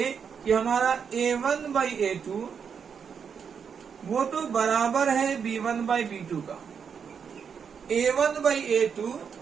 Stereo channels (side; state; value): left; quieter; 6.8 dB